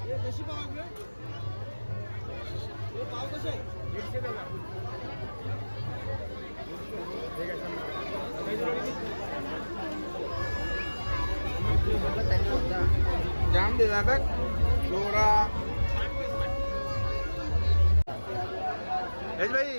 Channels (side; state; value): both; inverted; correlation -1.00